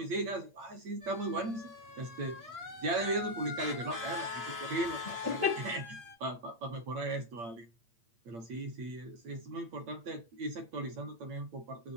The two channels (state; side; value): late; left; 8.7 ms